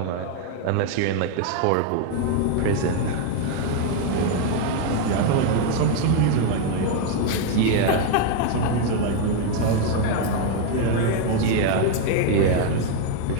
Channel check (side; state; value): both; different; correlation 0.01